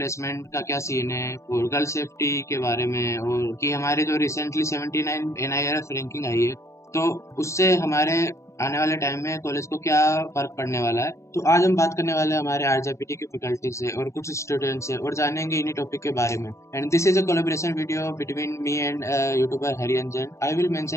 का क्या सीन है और गर्ल सेफ्टी के बारे में, और कि हमारे जो रिसेंटली 79 एनआईआरएफ रैंकिंग आई है, तो उससे हमारे आने वाले टाइम में कॉलेज को क्या फर्क पड़ने वाला है। तो आज हम बात करने वाले हैं हमारे आरजेपीटी की फैकल्टी से और कुछ स्टूडेंट्स से, और जानेंगे इन्हीं टॉपिक के बारे में। And this is a collaboration video between me and YouTuber Hariyanjan. I will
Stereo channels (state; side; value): late; right; 0.14 ms